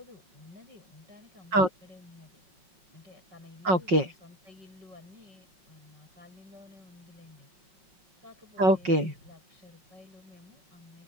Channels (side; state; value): left; late; 5.5 ms